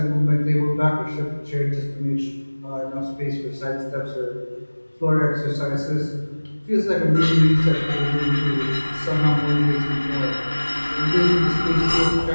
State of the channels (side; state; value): both; inverted; correlation -1.00